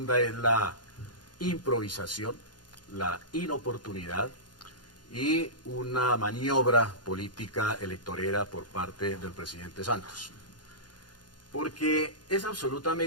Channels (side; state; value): right; late; 0.70 ms